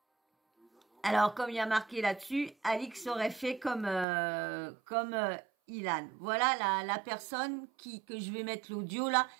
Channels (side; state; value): left; drops out; at 4.0 s